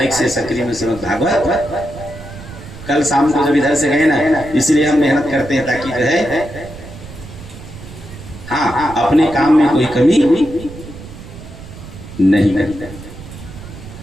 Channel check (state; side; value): noise; right; rumble, 15 dB below the sound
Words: से सकरी में श्रीमद् भागवत। कल शाम को जब इधर से गए ना, इसलिए हम मेहनत करते हैं ताकि जो है हाँ अपने काम में कोई कमी नहीं करते।